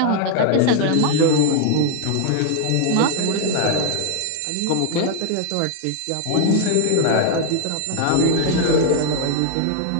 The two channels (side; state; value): both; different; correlation 0.00